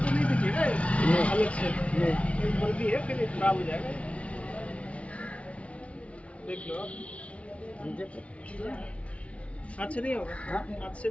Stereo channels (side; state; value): right; late; 0.063 ms